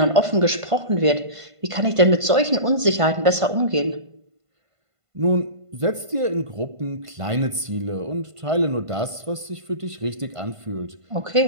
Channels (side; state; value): left; late; 1.5 ms